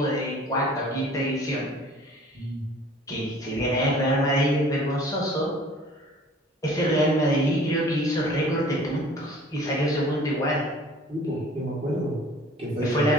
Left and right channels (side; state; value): both; normal; correlation 0.50